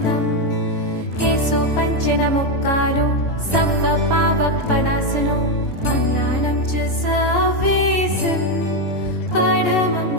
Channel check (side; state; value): right; late; 2.4 ms